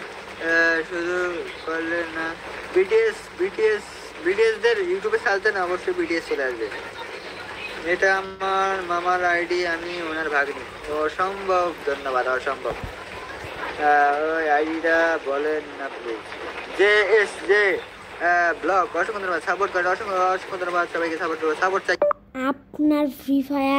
শুধু করলে না বিটিএস দের ইউটিউবে চালতে না অবশ্যই বিটিএস চলে আসবে এটা আমার মামার আইডি আমি ওনার ভাগ্নি অসম্ভব ধন্যবাদ অসম্ভব ওই আইডিটা বলেন না প্লিজ জে ব্লগ অসংখ্য ধন্যবাদ সাপোর্ট করে অসংখ্য ধন্যবাদ সবাইকে সাপোর্ট চাই আপনার ফ্রি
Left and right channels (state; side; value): identical; both; correlation 1.00